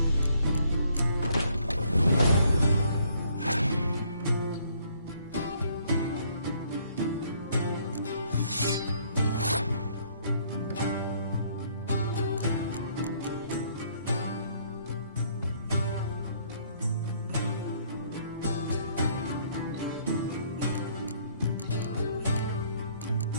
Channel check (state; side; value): inverted; both; correlation -0.65